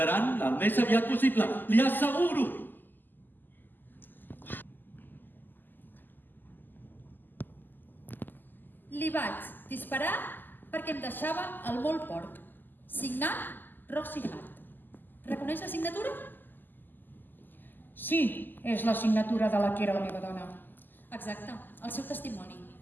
el més aviat possible, li asseguro. Li vaig disparar perquè em deixava el molt porc. Signat Roxy Hart. Reconeix la signatura? Sí, és la signatura de la que era la meva dona. Exacte, el seu testimoni.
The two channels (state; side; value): late; right; 0.089 ms